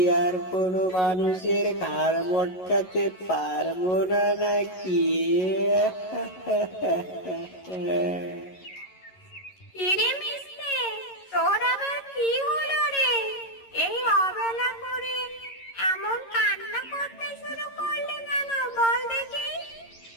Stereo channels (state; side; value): late; right; 11 ms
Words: আর কোনো মানুষের ঘাড় মটকাতে পারবো না নাকি? কিরে মিসকে, তোর আবার কি হলো রে? এই অবেলা করে এমন কান্না করতে শুরু করলি কেন, বল দেখি।